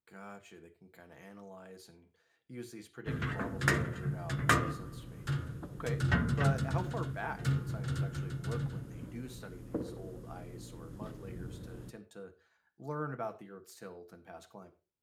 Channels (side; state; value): both; identical; correlation 1.00